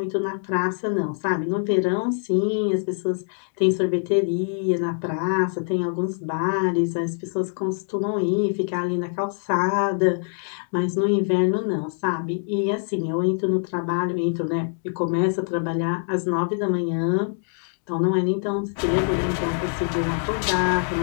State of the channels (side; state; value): right; silent; 62 dB below the other